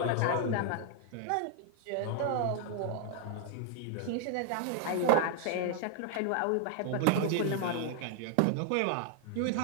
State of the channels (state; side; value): different; both; correlation 0.00